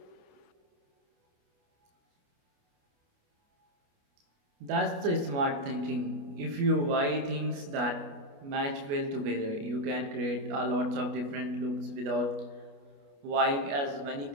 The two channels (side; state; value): left; late; 28 ms